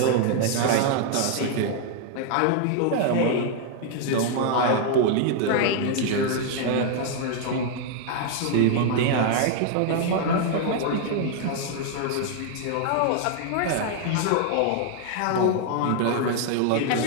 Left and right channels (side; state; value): both; different; correlation 0.00